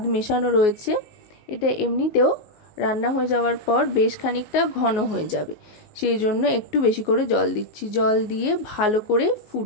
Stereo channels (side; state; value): right; late; 19 ms